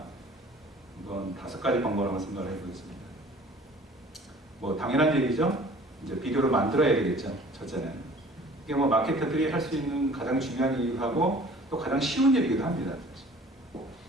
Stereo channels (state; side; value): normal; both; correlation 0.50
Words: 이건 5가지 방법을 한번 생각을 해보겠습니다. 뭐 당연한 얘기죠. 이제 비디오를 만들어야 되겠죠. 첫째는 이게 뭐 마케터들이 할 수 있는 가장 중요한 일이기도 하고 또 가장 쉬운 일이기도 합니다.